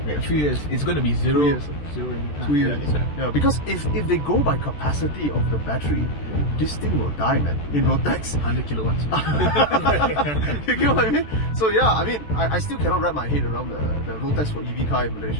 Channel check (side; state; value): right; late; 14 ms